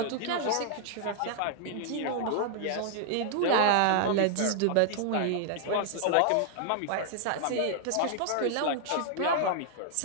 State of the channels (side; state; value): both; different; correlation -0.01